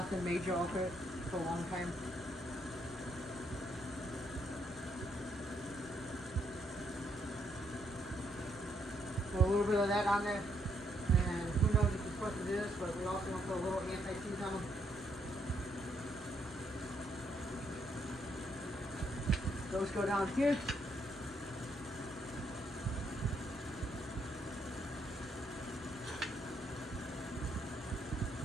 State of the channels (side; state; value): both; normal; correlation 0.74